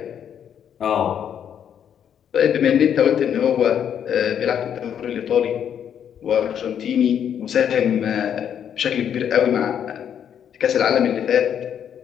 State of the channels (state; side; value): quieter; right; 8.9 dB